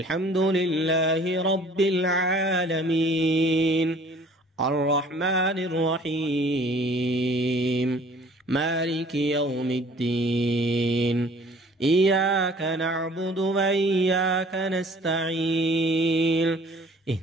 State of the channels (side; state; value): both; normal; correlation 0.52